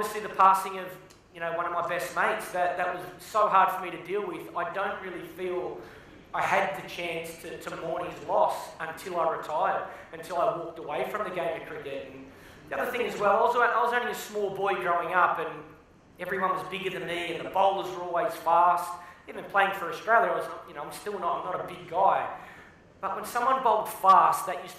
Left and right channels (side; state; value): both; identical; correlation 1.00